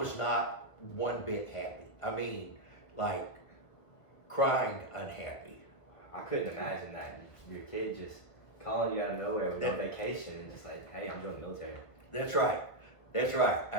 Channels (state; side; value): late; right; 1.5 ms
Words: not one bit happy. I mean, like crying unhappy. I couldn't imagine that. Your kid just calling you out of nowhere with no vacation and just like, hey, I'm joining the military. That's right. That's right.